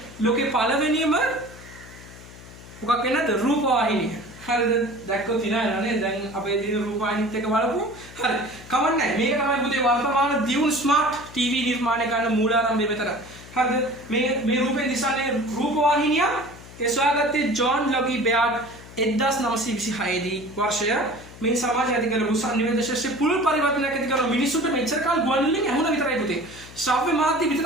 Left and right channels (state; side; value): noise; left; hum, 18 dB below the sound